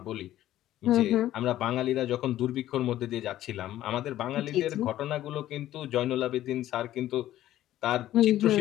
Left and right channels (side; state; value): right; quieter; 13.6 dB